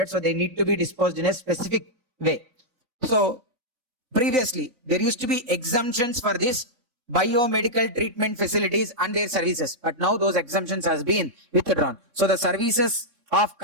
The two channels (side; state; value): left; late; 3.7 ms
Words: So they need to be disposed in a specific way. So previously, there used to be exemptions for this biomedical treatment facilities and their services, but now those exemptions has been withdrawn. So the services of